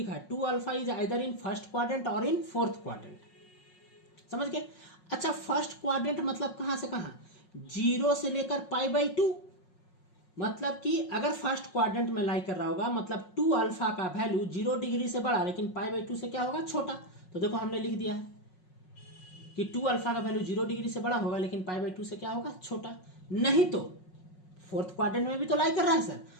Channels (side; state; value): right; late; 5.5 ms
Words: है 2α is either in first quadrant और इन फोर्थ क्वाड्रेंट। समझ गए? अच्छा, फर्स्ट क्वाड्रेंट मतलब कहां से कहां? 0 से लेकर π/2। मतलब कि अगर फर्स्ट क्वाड्रेंट में लाई कर रहा होगा मतलब 2α का वैल्यू 0 डिग्री से बड़ा लेकिन π/2 से क्या होगा? छोटा। तो देखो हमने लिख दिया है कि 2α का वैल्यू 0 डिग्री से बड़ा होगा लेकिन π/2 से क्या होगा? छोटा। नहीं तो फोर्थ क्वाड्रेंट में भी तो लाई कर रहा है सर।